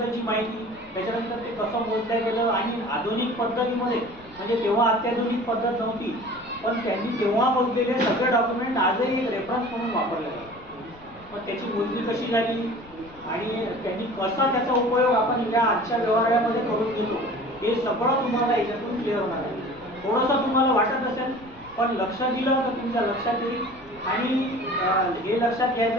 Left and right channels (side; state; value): left; noise; rumble, 23 dB below the sound